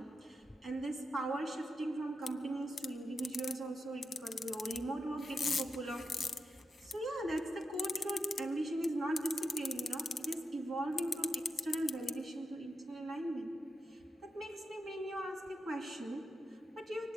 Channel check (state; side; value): normal; both; correlation 0.86